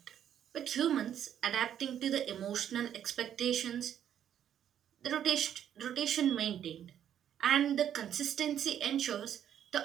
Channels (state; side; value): quieter; left; 9.9 dB